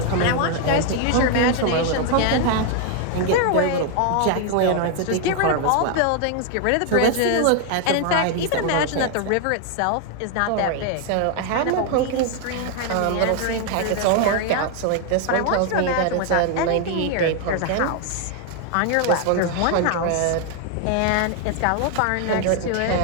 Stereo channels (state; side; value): different; both; correlation 0.00